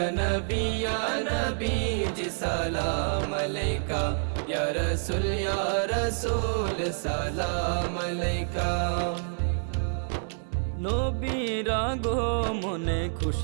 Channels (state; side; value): silent; left; 59 dB below the other